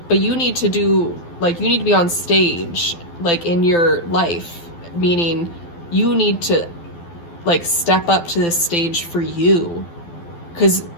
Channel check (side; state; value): right; late; 12 ms